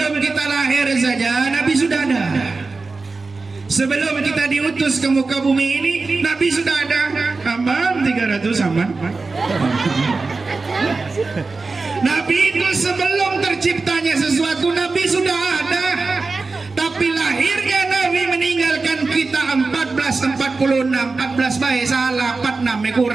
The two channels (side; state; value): left; quieter; 3.9 dB